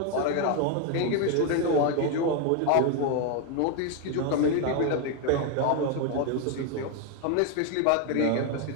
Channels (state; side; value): different; both; correlation 0.01